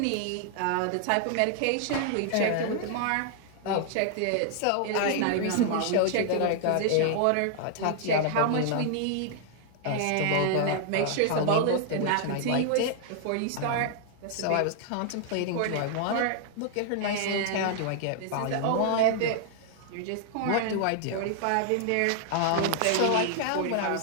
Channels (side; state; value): both; different; correlation 0.00